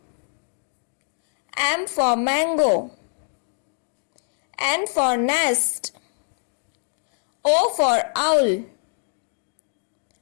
M for mango, N for nest, O for owl,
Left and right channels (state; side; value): silent; right; 62 dB below the other